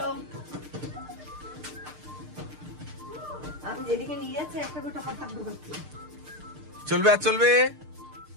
আমি যেদিকে নিয়ে যাচ্ছি একটা করে টাকা থাকবে। চলবে আর চলবে।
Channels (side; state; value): left; late; 6.6 ms